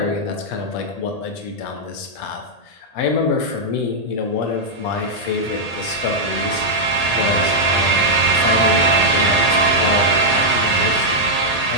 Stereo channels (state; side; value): late; right; 1.8 ms